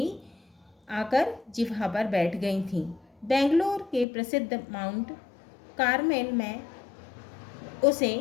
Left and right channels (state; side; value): drops out; right; at 4.0 s